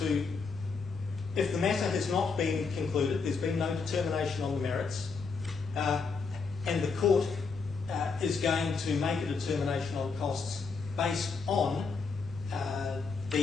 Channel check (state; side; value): quieter; right; 4.8 dB